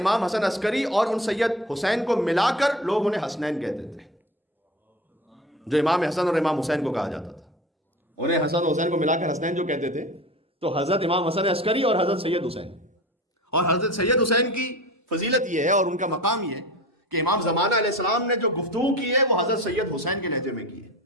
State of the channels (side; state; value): both; normal; correlation 0.34